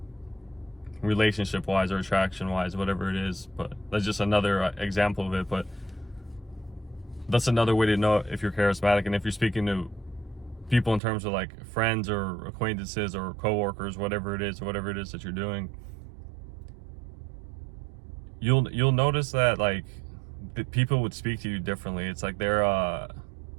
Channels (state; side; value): drops out; left; at 11.0 s